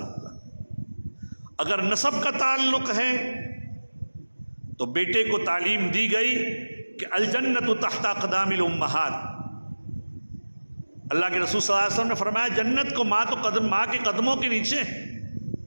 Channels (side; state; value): both; inverted; correlation -1.00